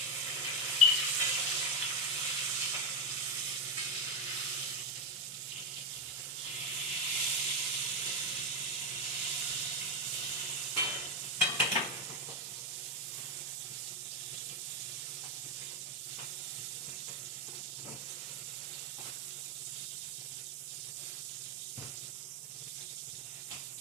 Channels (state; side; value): normal; both; correlation 0.07